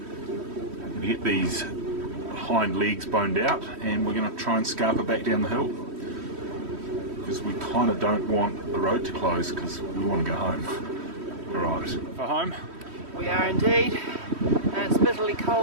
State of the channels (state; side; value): late; left; 3.1 ms